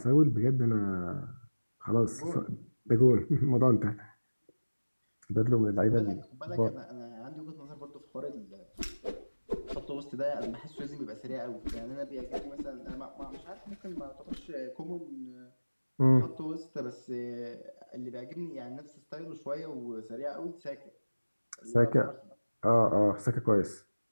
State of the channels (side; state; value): both; inverted; correlation -1.00